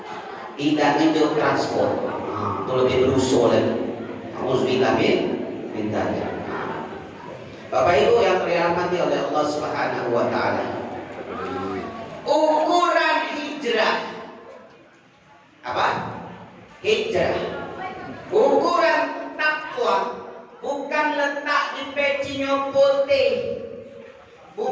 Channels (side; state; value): both; identical; correlation 1.00